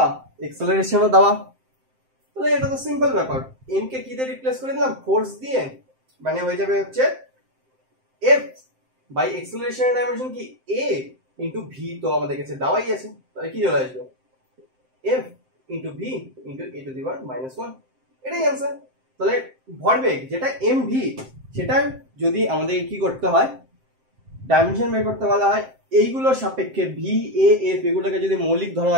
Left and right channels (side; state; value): left; late; 7.7 ms